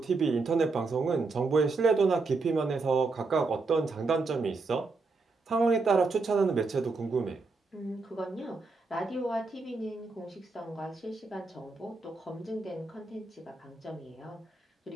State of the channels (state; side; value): quieter; left; 3.8 dB